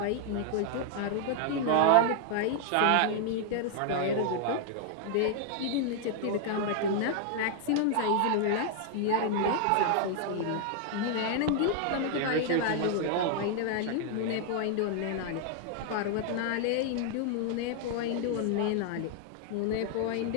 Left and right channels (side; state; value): both; different; correlation 0.00